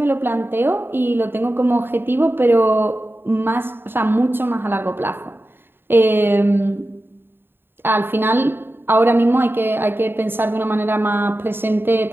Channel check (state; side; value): late; left; 0.10 ms